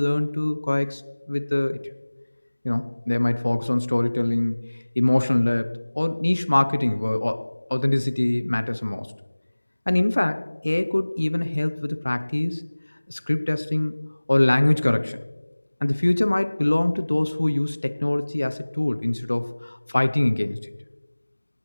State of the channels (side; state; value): both; inverted; correlation -1.00